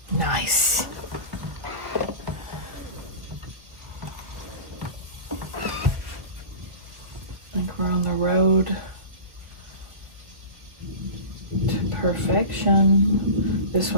Nice. I think we're on the road to perfection. This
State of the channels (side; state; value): left; late; 1.6 ms